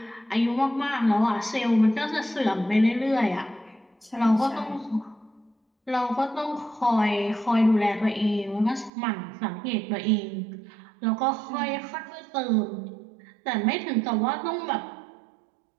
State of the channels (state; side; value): drops out; left; at 8.9 s